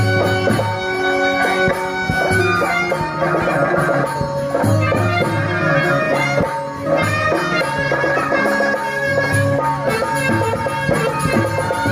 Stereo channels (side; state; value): both; identical; correlation 1.00